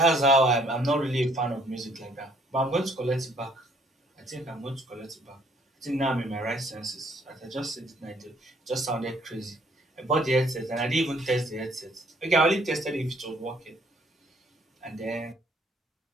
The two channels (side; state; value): both; normal; correlation 0.63